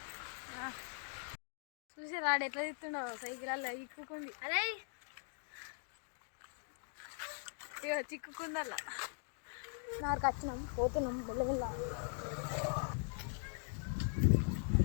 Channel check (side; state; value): right; silent; digital silence